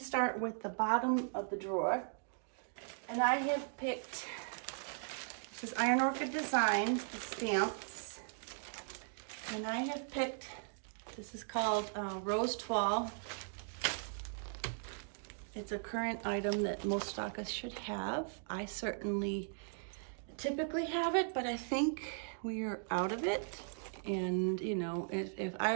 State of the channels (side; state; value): left; silent; digital silence